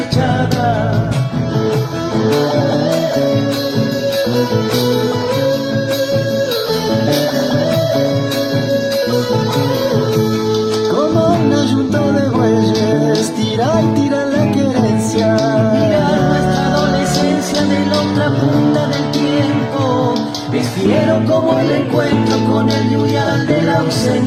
Como un ayunto de bueyes, tira y tira la querencia, mirar nuestra adolescencia de la otra punta del tiempo. Es fiero como el encuentro con el yuyal de la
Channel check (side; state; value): both; identical; correlation 1.00